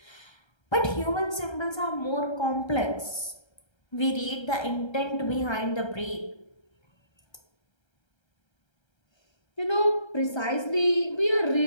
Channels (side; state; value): right; late; 1.3 ms